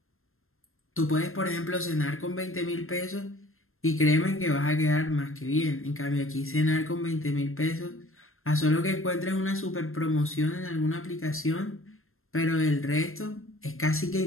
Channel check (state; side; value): late; right; 0.61 ms